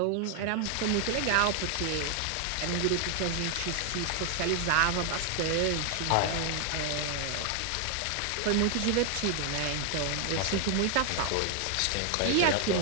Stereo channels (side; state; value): both; different; correlation 0.00